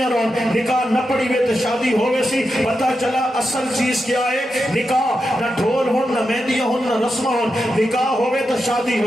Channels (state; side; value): normal; both; correlation 0.88